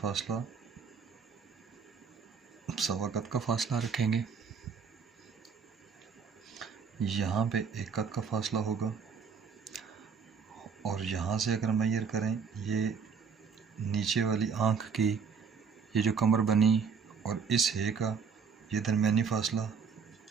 1.25 कत का फासला रखेंगे। यहाँ पे 1 कत का फासला होगा और यहाँ से अगर मैयर करें, ये नीचे वाली आँख की ये जो कमर बनी और इस है का ये दरमियानी फासला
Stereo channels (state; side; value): quieter; left; 6.0 dB